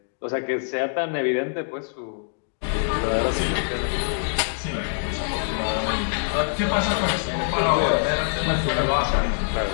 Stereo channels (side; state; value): right; silent; digital silence